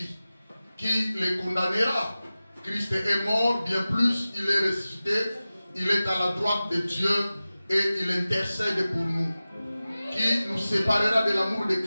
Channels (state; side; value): inverted; both; correlation -0.96